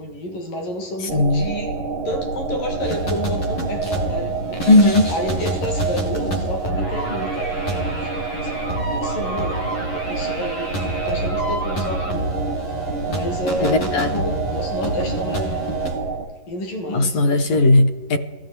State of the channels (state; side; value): late; right; 11 ms